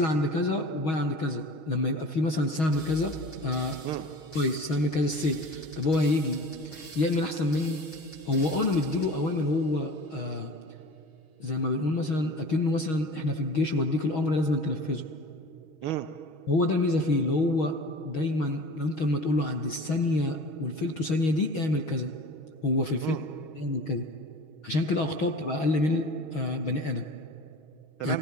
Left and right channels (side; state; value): right; late; 6.3 ms